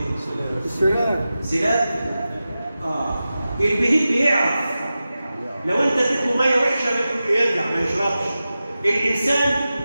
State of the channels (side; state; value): both; inverted; correlation -0.94